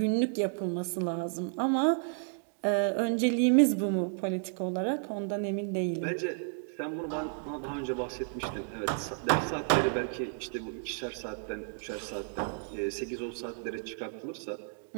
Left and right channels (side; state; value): left; silent; 56 dB below the other